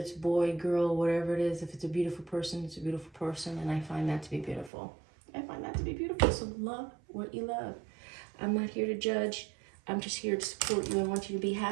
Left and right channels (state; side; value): drops out; left; at 4.7 s